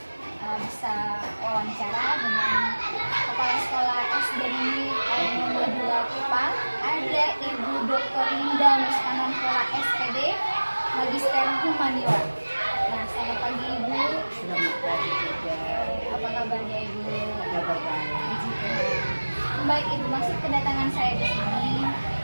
bisa wawancara dengan Kepala Sekolah SD Negeri nomor 2 Kupang. Ada Ibu Dr. Linda Muskananpola SPD, Magister Humaniora. Nah, selamat pagi Ibu. Selamat pagi juga. Apa kabarnya Ibu? Kabar baik. Puji Tuhan. Baik Ibu, maksud kedatangan saya di sini,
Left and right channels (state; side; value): inverted; both; correlation -1.00